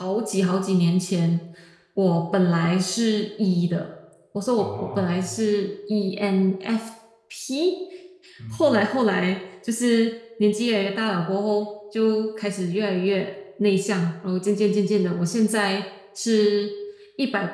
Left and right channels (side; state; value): both; identical; correlation 1.00